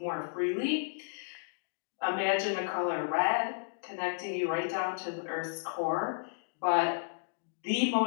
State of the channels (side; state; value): right; silent; digital silence